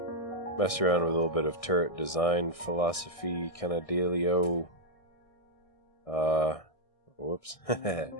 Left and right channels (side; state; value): right; late; 1.6 ms